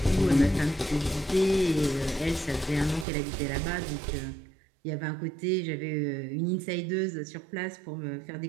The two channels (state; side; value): drops out; left; at 3.1 s